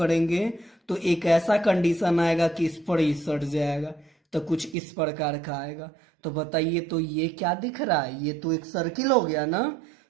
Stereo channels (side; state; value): left; drops out; at 4.8 s